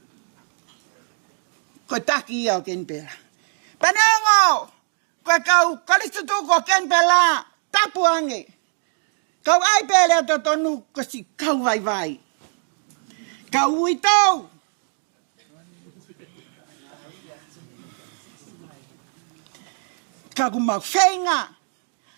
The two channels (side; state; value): left; silent; 64 dB below the other